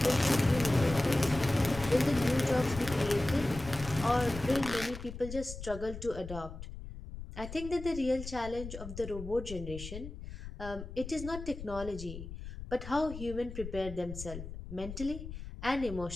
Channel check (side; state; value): left; noise; rumble, 10 dB below the sound